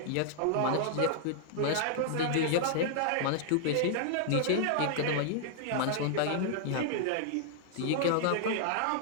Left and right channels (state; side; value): different; both; correlation -0.01